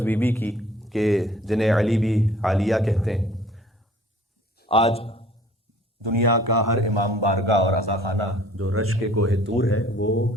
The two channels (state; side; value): normal; both; correlation 0.53